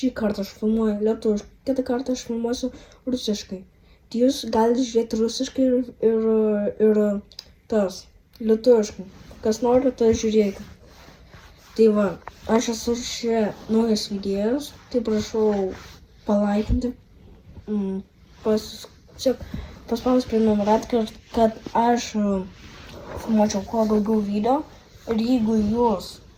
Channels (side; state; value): both; identical; correlation 1.00